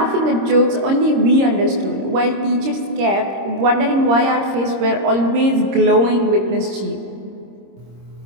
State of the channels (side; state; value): left; late; 26 ms